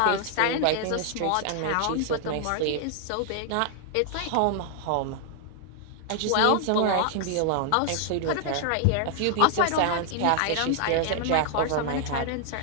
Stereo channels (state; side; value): different; both; correlation 0.00